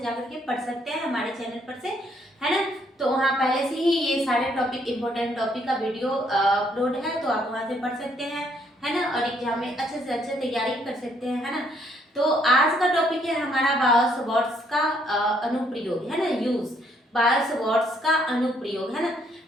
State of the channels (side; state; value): both; normal; correlation 0.69